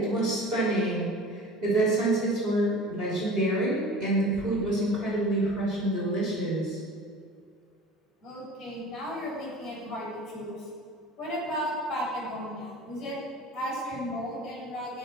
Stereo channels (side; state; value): both; normal; correlation 0.40